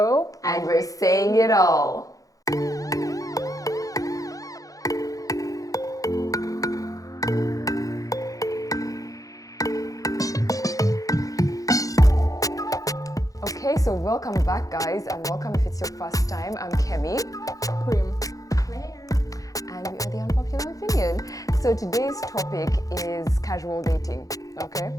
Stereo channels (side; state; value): right; late; 0.17 ms